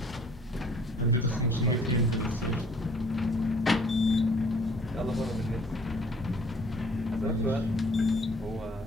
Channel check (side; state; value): both; normal; correlation 0.56